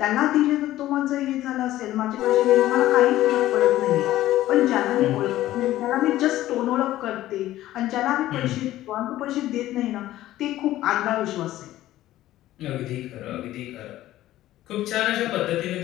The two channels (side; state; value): right; quieter; 14.7 dB